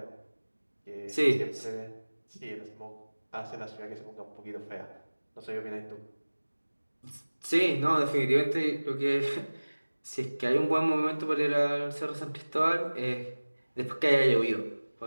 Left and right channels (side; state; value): both; inverted; correlation -1.00